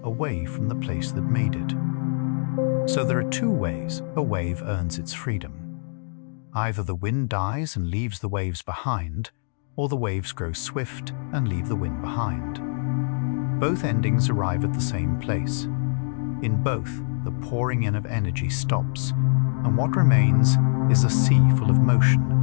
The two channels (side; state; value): right; silent; digital silence